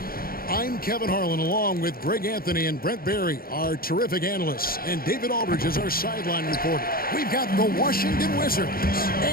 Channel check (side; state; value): right; late; 0.43 ms